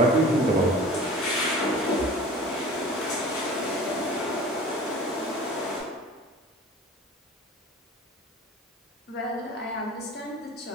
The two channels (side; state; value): both; normal; correlation 0.41